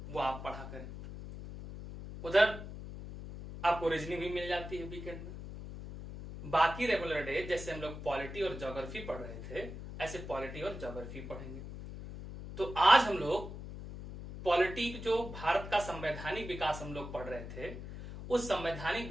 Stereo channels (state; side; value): noise; left; hum, 10 dB below the sound